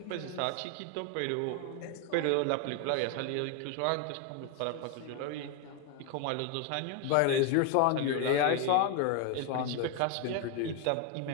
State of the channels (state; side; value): different; both; correlation 0.01